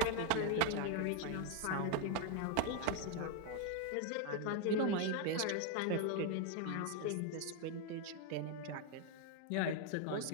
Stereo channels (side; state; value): both; different; correlation 0.01